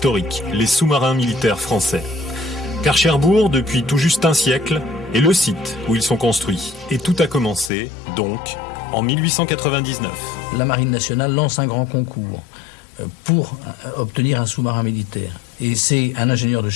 les sous-marins militaires français. Car Cherbourg, depuis tout juste un siècle, est le site où ils sont construits. Et tout a commencé, donc, en 1899. La Marine nationale lance un grand concours pour obtenir un sous-marin militaire. Et c'est un ingénieur de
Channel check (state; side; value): drops out; right; at 7.7 s